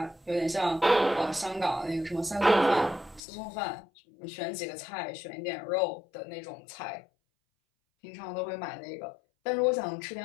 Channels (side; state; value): right; drops out; at 3.2 s